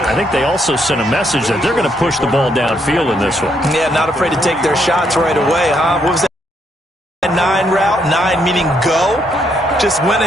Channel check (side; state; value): both; normal; correlation 0.74